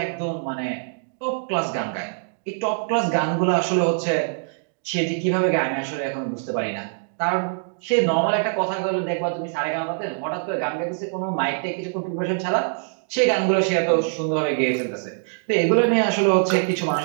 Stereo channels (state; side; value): silent; left; digital silence